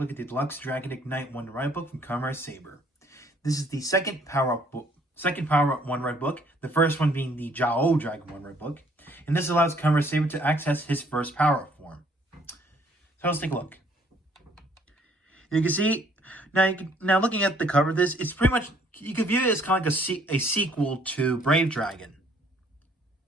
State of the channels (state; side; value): normal; both; correlation 0.62